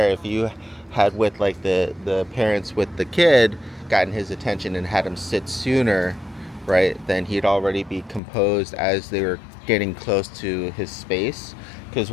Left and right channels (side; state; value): right; drops out; at 8.2 s